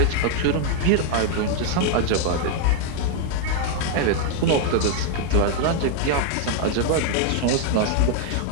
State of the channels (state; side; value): different; both; correlation 0.00